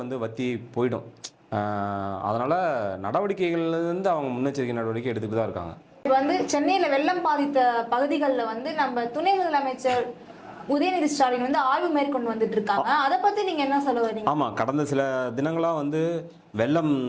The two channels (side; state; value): both; identical; correlation 1.00